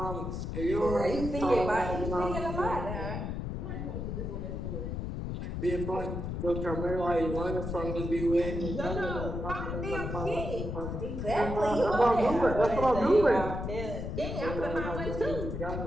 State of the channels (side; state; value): left; noise; rumble, 4 dB below the sound